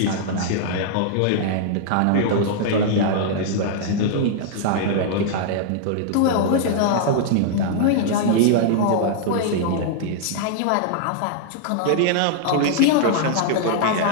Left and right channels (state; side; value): different; both; correlation -0.01